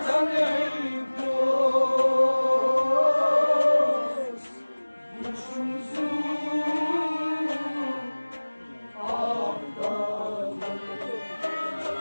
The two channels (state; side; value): inverted; both; correlation -1.00